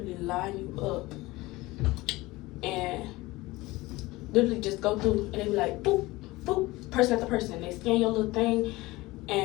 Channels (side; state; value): right; quieter; 20.2 dB